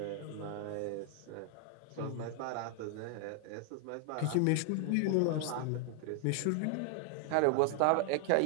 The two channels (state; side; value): different; both; correlation 0.00